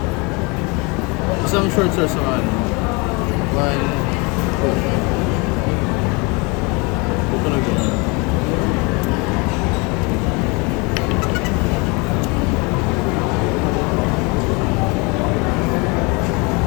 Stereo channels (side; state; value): right; quieter; 28.7 dB